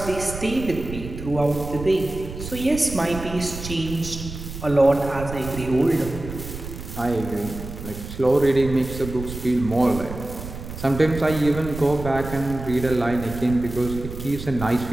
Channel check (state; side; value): noise; right; rumble, 10 dB below the sound